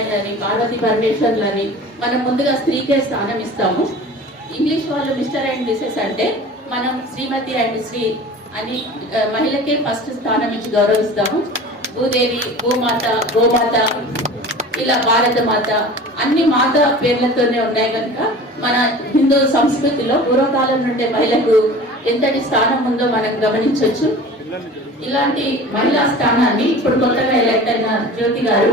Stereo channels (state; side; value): normal; both; correlation 0.40